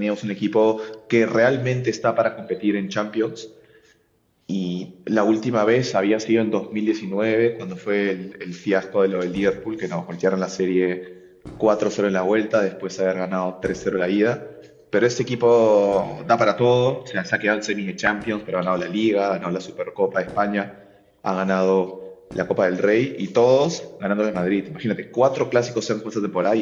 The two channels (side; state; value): both; identical; correlation 1.00